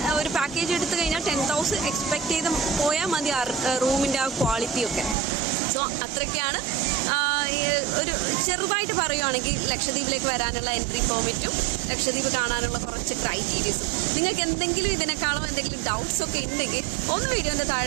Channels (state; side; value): drops out; left; at 5.2 s